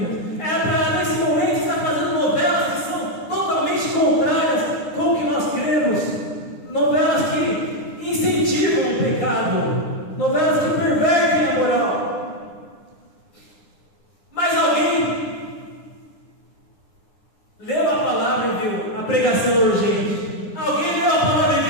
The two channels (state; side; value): late; right; 9.9 ms